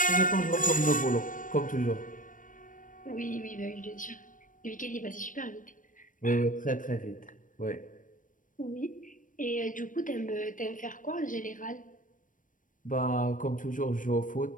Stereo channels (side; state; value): right; late; 0.38 ms